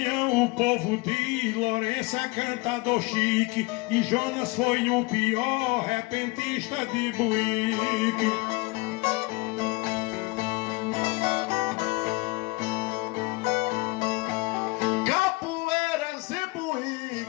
o povo diz Lourenço é cantador chique e Jonas foi o pior repentista de Buíque. Capoeiras e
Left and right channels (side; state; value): right; quieter; 25.4 dB